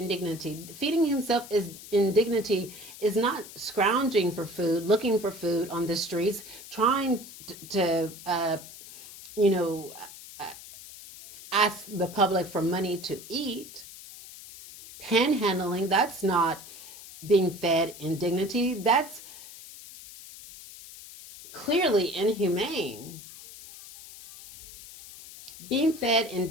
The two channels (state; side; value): noise; left; hiss, 16 dB below the sound